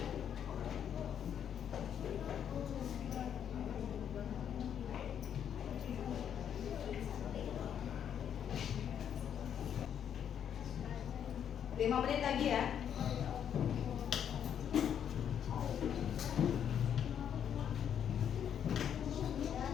Lima menit lagi ya.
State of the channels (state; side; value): quieter; right; 8.9 dB